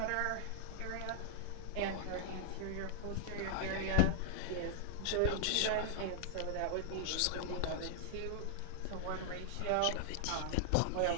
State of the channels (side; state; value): both; different; correlation 0.00